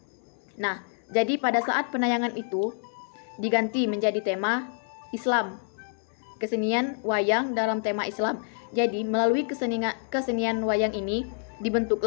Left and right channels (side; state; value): right; silent; 60 dB below the other